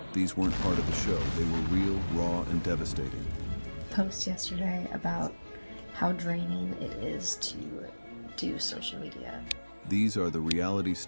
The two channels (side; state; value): both; inverted; correlation -1.00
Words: These weren't part of the show. They were real, raw, and devastating. Post yesterday about how draining it is to do social media. These are the reality